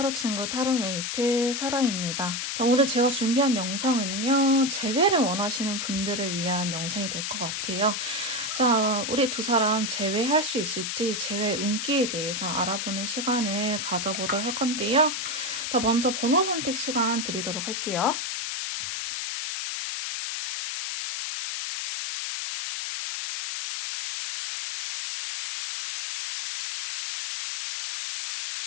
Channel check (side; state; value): left; noise; hiss, 3 dB below the sound